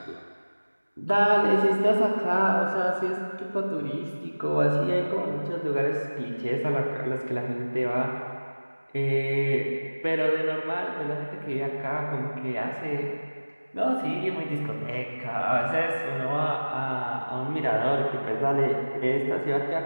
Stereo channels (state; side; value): inverted; both; correlation -1.00